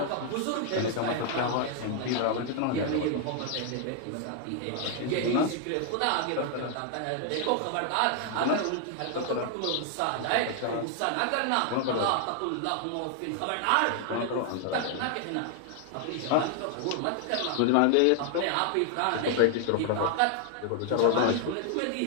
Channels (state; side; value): different; both; correlation 0.00